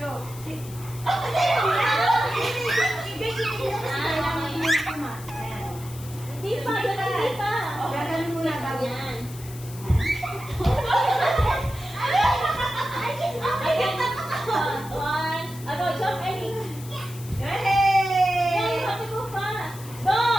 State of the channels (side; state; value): left; noise; hiss, 17 dB below the sound